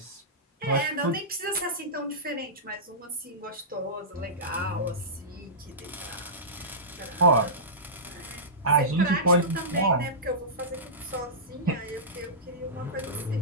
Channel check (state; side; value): normal; both; correlation -0.16